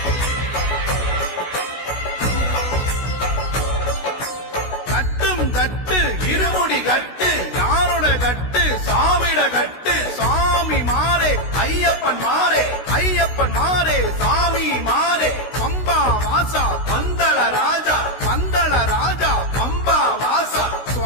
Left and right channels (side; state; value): right; late; 16 ms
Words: கட்டு இருமுடி கட்டு யாரோட கட்டு சாமிட கட்டு சாமி மாறே ஐயப்பன் மாறே ஐயப்பன் மாறே சாமி மாறே பம்பா வாசா பந்தள ராஜா பம்பா வாசா